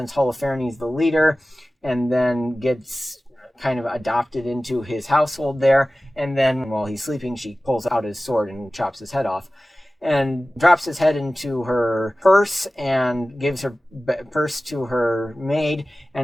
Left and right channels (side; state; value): both; normal; correlation 0.96